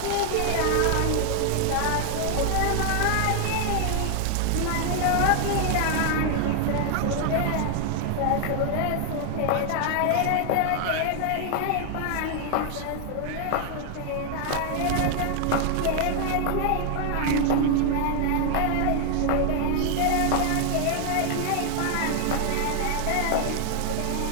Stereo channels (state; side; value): different; both; correlation 0.00